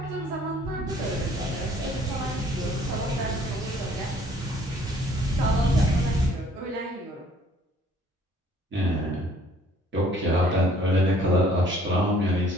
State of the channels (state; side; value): normal; both; correlation 0.58